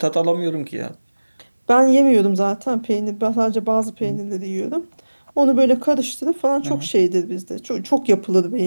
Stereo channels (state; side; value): inverted; both; correlation -1.00